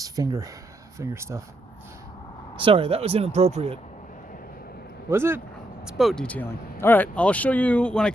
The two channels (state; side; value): normal; both; correlation 0.79